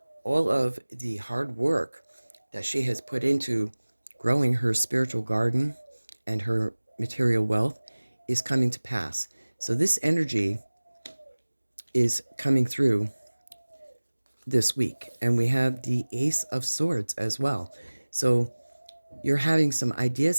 all of the hard work that she has put into growing her spiritual garden and her material wealth is coming to pass. So this energy is coming through this week. And we have the Ace of Swords as well. So you're having some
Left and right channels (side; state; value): both; inverted; correlation -1.00